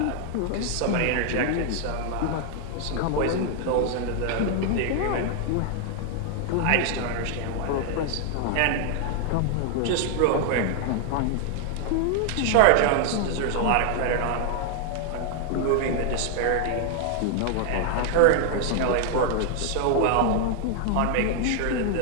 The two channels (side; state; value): both; different; correlation 0.00